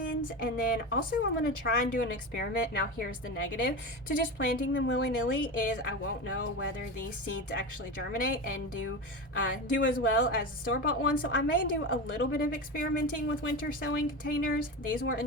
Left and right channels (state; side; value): normal; both; correlation 0.23